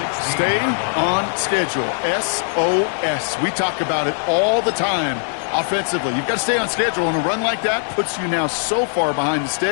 Stay on schedule. SOS. We talk about it all the time offensively. You've got to stay on schedule, and a run like that puts you now so far behind the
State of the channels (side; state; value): right; silent; 64 dB below the other